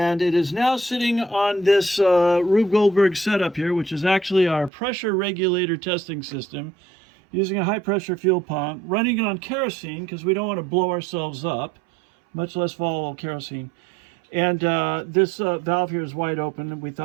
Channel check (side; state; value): left; drops out; at 4.7 s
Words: it is now sitting on this Rube Goldberg setup here, which is actually our pressure regulator testing system, using a high pressure fuel pump, running it on kerosene because we don't want to blow ourselves up, much less volatile kerosene. And this valve here is wide open, and we